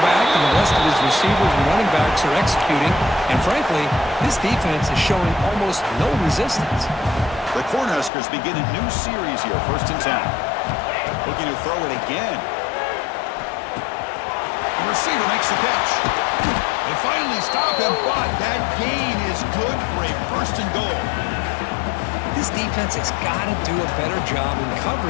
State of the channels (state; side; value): drops out; right; at 8.1 s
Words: and the rest of his receivers and running backs are executing. And frankly, this defense is showing almost no resistance. The Cornhuskers begin a new series here, 1st and 10. Looking to throw it again. The receiver makes the catch. They finally stop him, but that gain is good for a 1st and goal. This defense has got to do a better job in